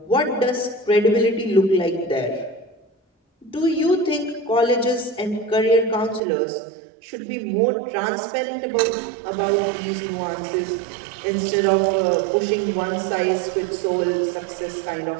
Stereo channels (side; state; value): left; drops out; at 6.2 s